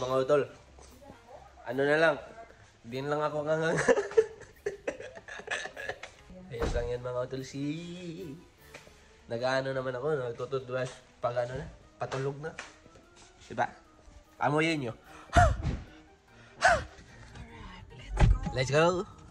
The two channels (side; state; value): both; identical; correlation 1.00